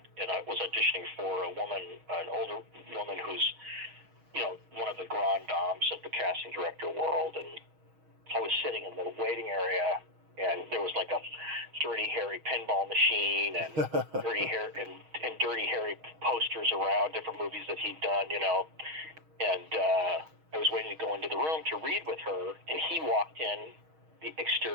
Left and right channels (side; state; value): left; late; 6.3 ms